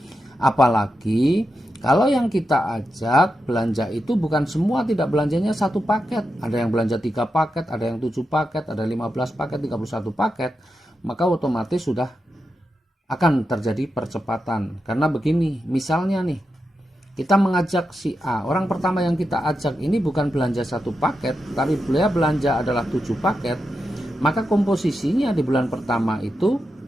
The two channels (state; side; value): normal; both; correlation 0.88